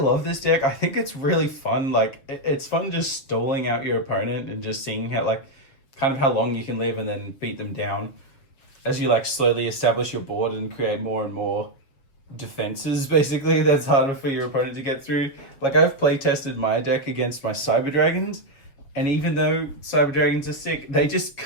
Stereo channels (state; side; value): late; right; 7.0 ms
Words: this deck. I think it's really fun. Like, it's fun just stalling out your opponent and just seeing how, like, kind of how long you can live and then beat them down as you, like, slowly establish your board and create more and more defenses, basically, that's harder for your opponent to get through. Like, I've play tested my deck against my Cyber Dragons, and even though Cyber Dragons are sick, they just